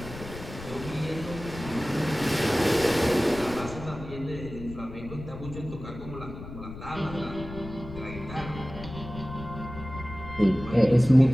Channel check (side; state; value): left; noise; rumble, 12 dB below the sound